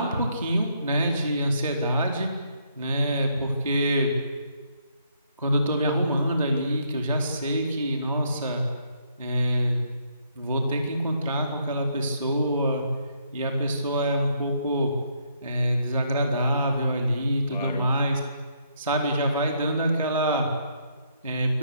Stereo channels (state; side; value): inverted; both; correlation -0.72